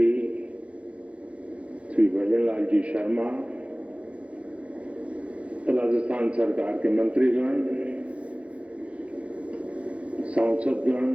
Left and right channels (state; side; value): late; left; 0.063 ms